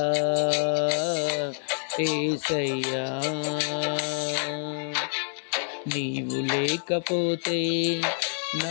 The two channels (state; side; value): silent; right; 56 dB below the other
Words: యేసయ్యా. నీవు లేకపోతే